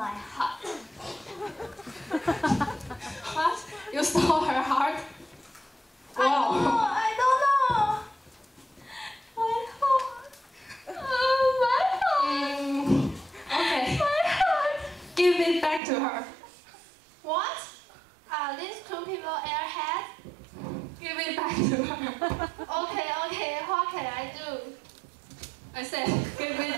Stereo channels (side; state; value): left; drops out; at 15.8 s